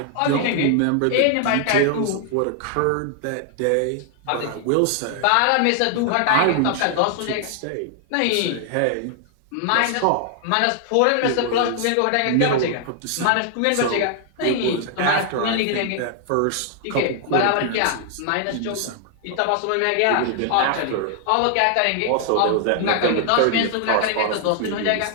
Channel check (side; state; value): both; different; correlation 0.00